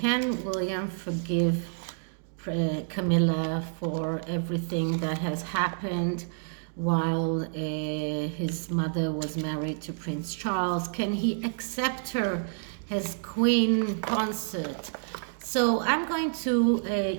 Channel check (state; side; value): silent; left; digital silence